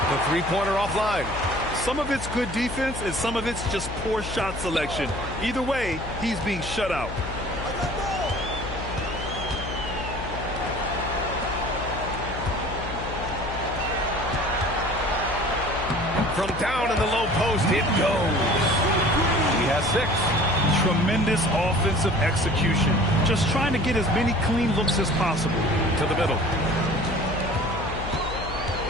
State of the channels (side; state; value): left; noise; hum, 9 dB below the sound